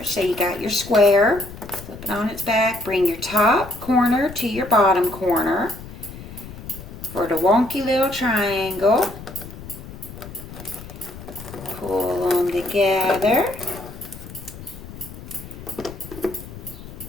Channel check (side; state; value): left; noise; rumble, 14 dB below the sound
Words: So you got your square. Flip it on its back. Bring your top corner to your bottom corner for the wonky little triangle. Pull them together.